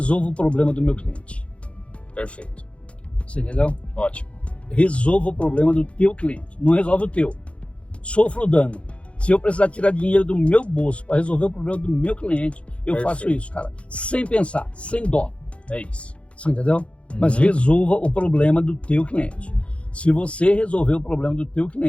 o problema do meu cliente. Perfeito. Você entendeu? Ótimo. Resolva o problema do teu cliente, não resolve o teu. Sofra o dano. Se eu precisar tirar dinheiro do meu bolso para resolver o problema do meu cliente, eu faço isso, cara. Sem pensar, sem dó. É isso. Você entendeu? Mas resolva o problema do teu cliente. Se você resolver o problema do teu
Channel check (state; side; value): late; right; 0.061 ms